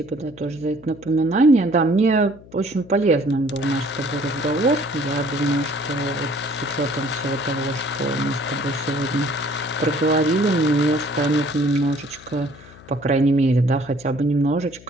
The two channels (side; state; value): left; noise; hum, 21 dB below the sound